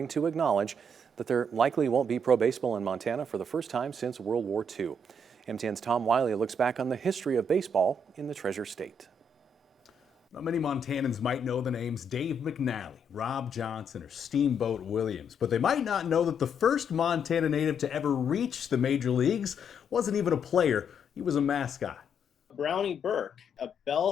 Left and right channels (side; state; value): both; normal; correlation 0.73